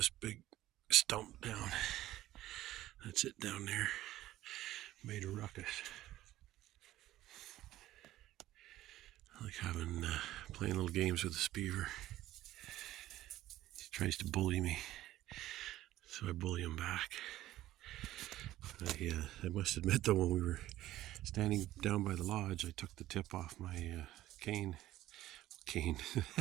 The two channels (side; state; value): left; quieter; 14.8 dB